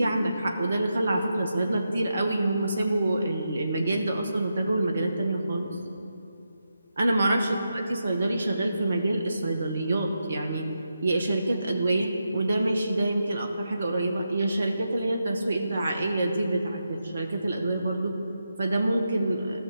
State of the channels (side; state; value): both; inverted; correlation -0.86